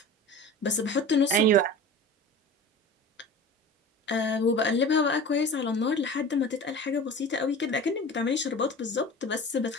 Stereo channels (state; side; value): normal; both; correlation 0.37